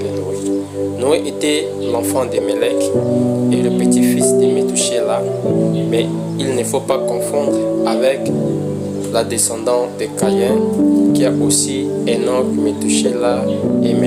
Noé. Noé était l'enfant de Mélec et le petit-fils de Métouchéla, mais il ne faut pas confondre avec la descendante de Caïn, qui a aussi Enoch, Métouchéla et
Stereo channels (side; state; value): both; identical; correlation 1.00